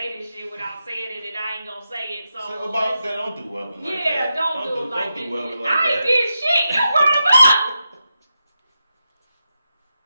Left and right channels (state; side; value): inverted; both; correlation -0.88